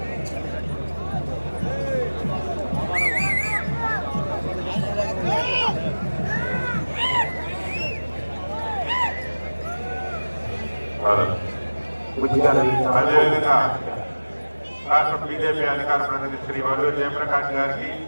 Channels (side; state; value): both; inverted; correlation -1.00